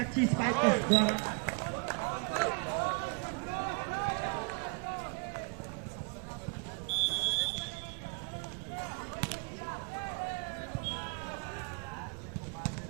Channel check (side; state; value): left; quieter; 34.5 dB